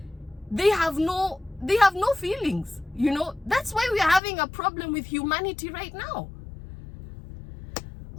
they have no feelings. You know, that's why we are having a problem with humanity right now.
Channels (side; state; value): right; drops out; at 4.2 s